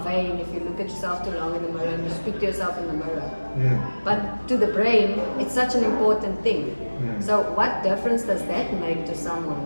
vain if you look at yourself too long in the mirror and you speak to yourself in the mirror. But to the brain, it's such an important thing. So what difference does that make to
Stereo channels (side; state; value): both; inverted; correlation -1.00